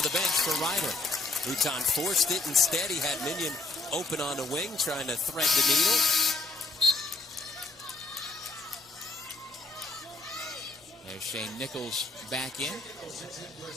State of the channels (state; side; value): quieter; right; 3.2 dB